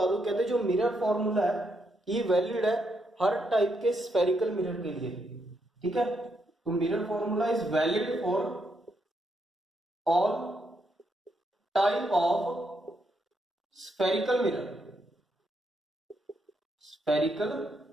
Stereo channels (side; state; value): both; normal; correlation 0.78